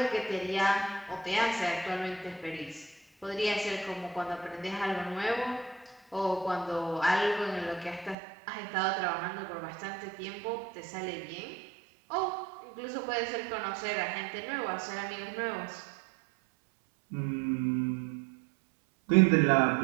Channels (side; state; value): left; drops out; at 8.2 s